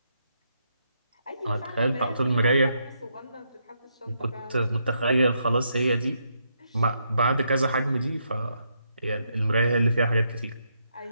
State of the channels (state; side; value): inverted; both; correlation -0.78